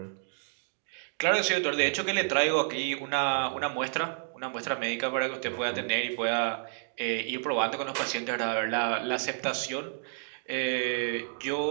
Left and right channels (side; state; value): left; silent; digital silence